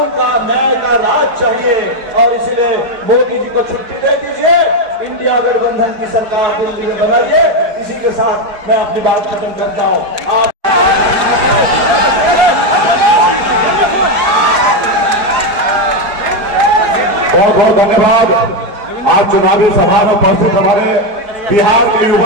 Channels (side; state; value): left; late; 4.6 ms